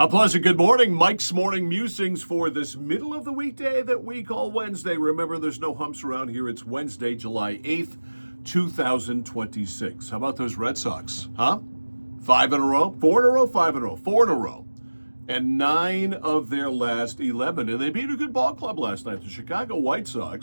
pleasant good morning. Mike's Morning Musings for this middle of the weekday that we call Wednesday. Remember, there's no humps around here. It's Wednesday, July 8th, 2026. How about those Red Sox, huh? 5 in a row? 4 in a row? 5 in a row? 4 in a row. And 9 of their last 11. And they beat a good ball club last night. The Chicago White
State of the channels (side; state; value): both; inverted; correlation -1.00